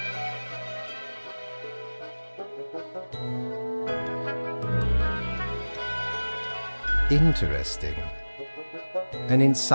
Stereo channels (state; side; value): inverted; both; correlation -1.00